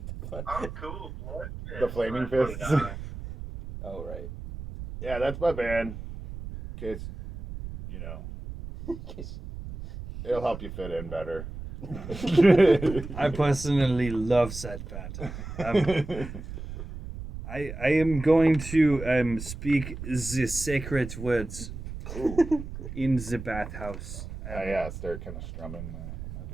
the fun. Oh, cool. Blood fist. The flaming I put it fists. on. Oh right. Yeah, that's my band. In case, you know, it'll help you fit in better. I personally love that part. I am going to speak the sacred words in the bathhouse. Yeah, start kind of strumming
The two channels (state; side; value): noise; right; rumble, 10 dB below the sound